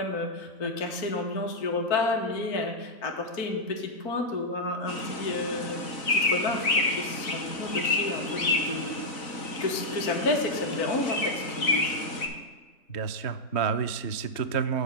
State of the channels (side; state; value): right; late; 3.9 ms